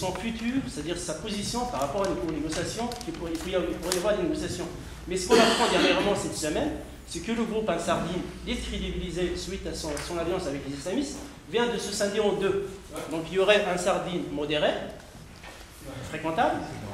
futur, c'est-à-dire sa position par rapport aux négociations, il pourrait y avoir des négociations. Mais ce qu'on apprend dernièrement cette semaine, c'est que le groupe Ansar Din, décrédibilisé suite à son alliance avec les islamistes, vient de se scinder en deux. Donc il y aurait Ansar Din modéré, fréquentable,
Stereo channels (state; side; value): identical; both; correlation 1.00